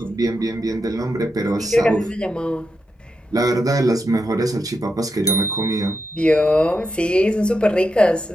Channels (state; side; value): normal; both; correlation 0.85